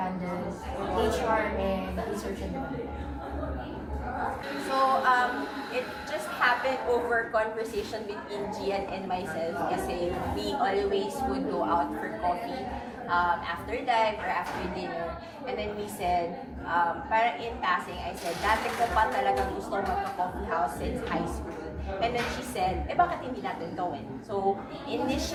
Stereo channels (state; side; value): identical; both; correlation 1.00